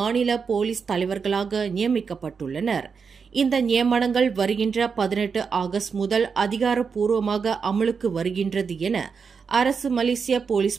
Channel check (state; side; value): quieter; left; 5.7 dB